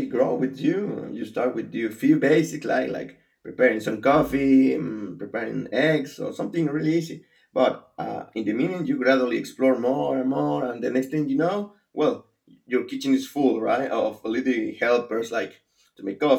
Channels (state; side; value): identical; both; correlation 1.00